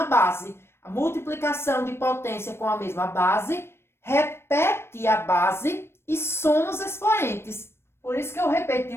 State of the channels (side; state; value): right; late; 0.12 ms